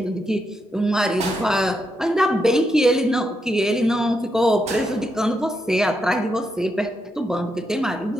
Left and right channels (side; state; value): both; normal; correlation 0.82